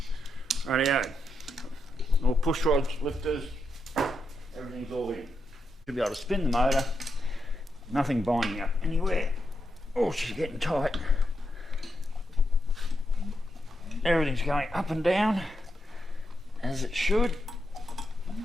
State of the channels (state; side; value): normal; both; correlation 0.84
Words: Rightio, all push rods, lifters, everything's all in. Should be able to spin the motor, nothing binding up anywhere. Oh, she's getting tight. Everything's going up and down as it should.